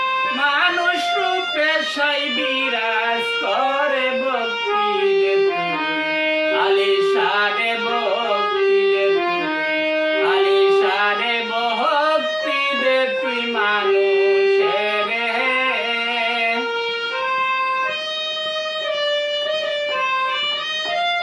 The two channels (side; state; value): both; identical; correlation 1.00